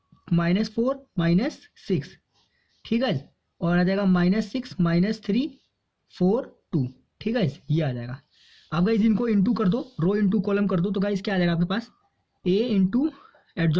-4 -6। ठीक है, और आ जाएगा -6 -3 4 2। ठीक है, ये आ जाएगा। अब गाइज इनको इंटू कर दो, रो इंटू कॉलम कर दो, तो गाइज क्या आ जाएगा आपके पास, a into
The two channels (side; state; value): both; identical; correlation 1.00